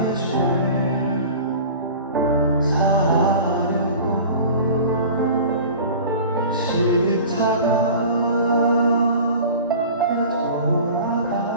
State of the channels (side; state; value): both; inverted; correlation -0.39